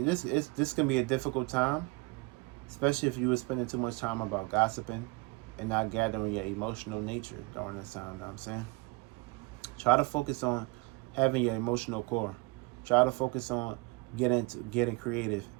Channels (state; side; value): quieter; left; 25.5 dB